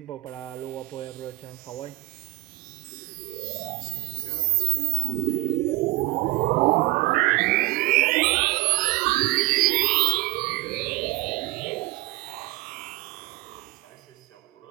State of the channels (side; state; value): left; quieter; 21.6 dB